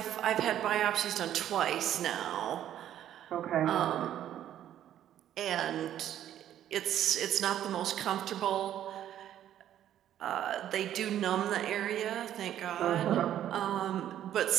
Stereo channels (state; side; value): quieter; left; 11.2 dB